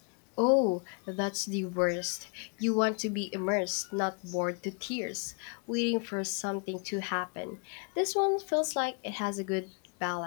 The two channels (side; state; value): right; quieter; 36.6 dB